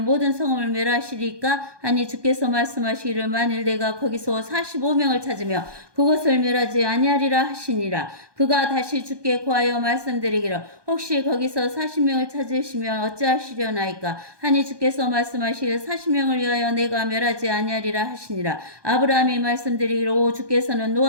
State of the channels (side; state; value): left; late; 1.2 ms